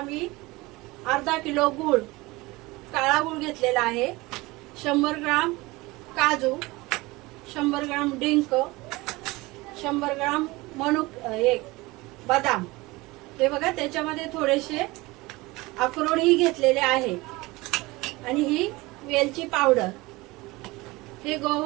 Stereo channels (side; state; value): left; quieter; 21.9 dB